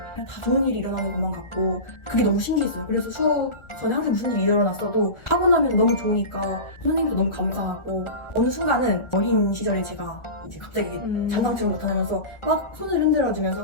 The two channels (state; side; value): late; right; 1.4 ms